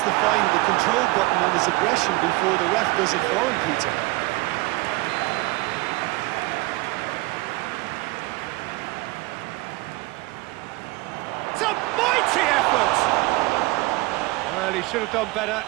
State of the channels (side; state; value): left; quieter; 22.3 dB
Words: to find the control button on his aggression before the ref does it for him, Peter. It's a Well, he should have done better,